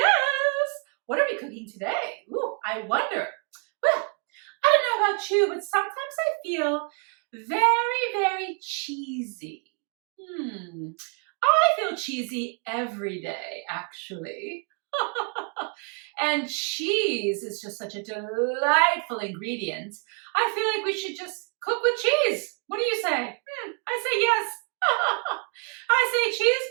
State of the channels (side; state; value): left; quieter; 38.6 dB